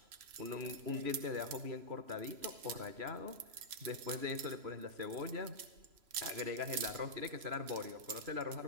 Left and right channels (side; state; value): left; late; 3.0 ms